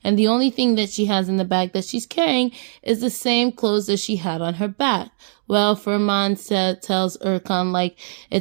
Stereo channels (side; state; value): left; silent; digital silence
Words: And the only thing that she has in the bag that she's carrying is the same clothes that she had on her back. Well, Firman tells Erkan, like,